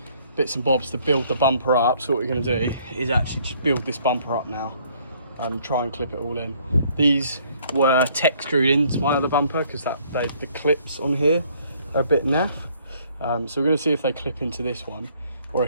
bits and bobs to build the bumper up. So what we're going to do is actually just build this bumper up now and try and clip it all in. These were tech screwed into my other bumper because the clips on here are a bit naff. So we're going to see if they clip into this one, or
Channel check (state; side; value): inverted; both; correlation -0.62